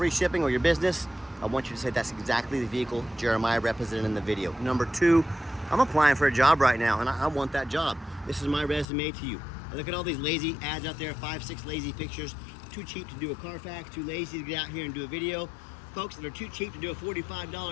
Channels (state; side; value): drops out; right; at 8.8 s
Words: shipping or your business, I want you to say that's exactly the vehicle Jeremiah represented in the video. Number 2, I'm applying for a job right now and I want that job. This is my resume to you. I look at all these lazy ads out there, 5, 6 lazy pictures, too cheap to do a Carfax, too lazy to get out here and do a video. Folks that are too cheap to do a